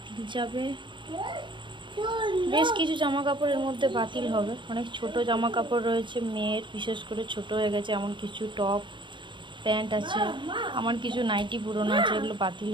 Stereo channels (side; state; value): left; late; 0.23 ms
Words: যাবে, বেশ কিছু জামা কাপড়ের মধ্যে বাতিল হবে। অনেক ছোট জামা কাপড় রয়েছে মেয়ের, বিশেষ করে ছোট হয়ে গেছে, এমন কিছু টপ প্যান্ট আছে, আমার কিছু নাইটি পুরনো আছে, এগুলো বাতিল